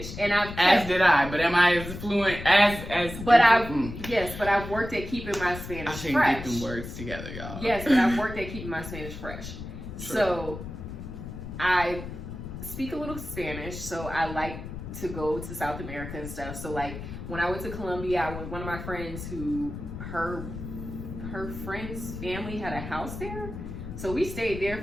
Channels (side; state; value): left; noise; rumble, 9 dB below the sound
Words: and as did I. But am I as fluent as? But I've worked at keeping my Spanish fresh. I can't get them words together, y'all. Yes, but I've worked at keeping my Spanish fresh. True. So I speak a little Spanish, so I like to go to South America and stuff. So like when I went to Colombia, one of my friends who her friend's family had a house there, so we stayed there